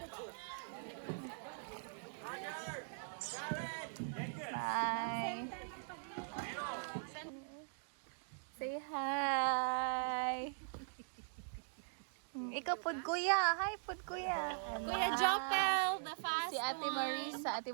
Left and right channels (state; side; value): silent; left; digital silence